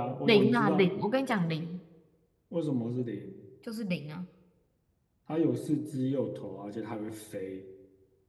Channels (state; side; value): identical; both; correlation 1.00